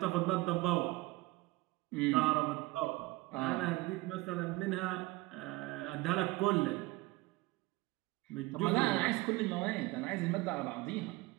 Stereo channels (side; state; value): left; quieter; 20.9 dB